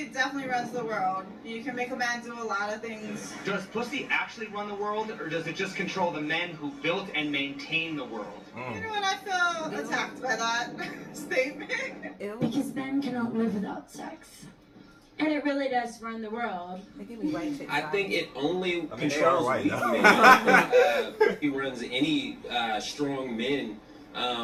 definitely runs the world. You can make a man do a lot of things. Does pussy actually run the world, or does it just control the men who built and maintain the world? You know what? I feel attacked by that statement. Because men cannot live without sex. And it really does run the world. I think it only controls weak men. He runs any strong men.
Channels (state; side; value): identical; both; correlation 1.00